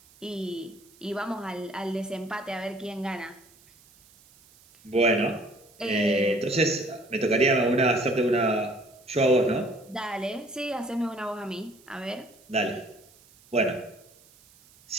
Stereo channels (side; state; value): right; noise; hiss, 27 dB below the sound